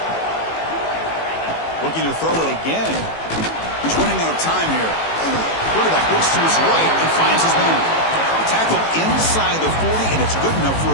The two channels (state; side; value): late; right; 18 ms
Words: Looking to throw it again. He's running out of time here. Quarterback looks to his right and finds his man. Tackle inside the 40, and it's good enough for